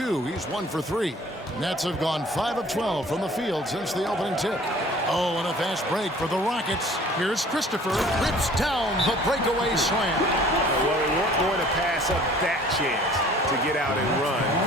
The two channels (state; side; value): normal; both; correlation 0.51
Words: He's 1 for 3. Nets have gone 5 of 12 from the field since the opening tip. Oh, and a fast break for the Rockets. Here's Christopher. Rips down the breakaway slam. Well, they weren't going to pass up that chance to get out and run